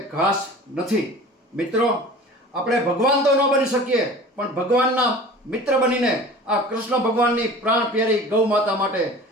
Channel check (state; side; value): normal; both; correlation 0.40